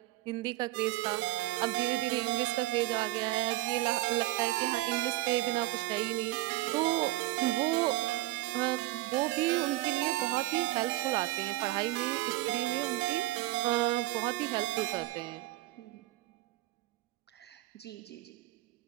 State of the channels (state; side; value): quieter; left; 18.5 dB